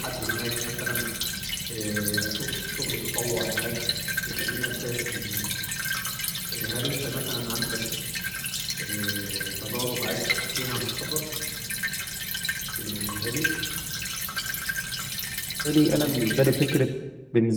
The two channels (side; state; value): both; identical; correlation 1.00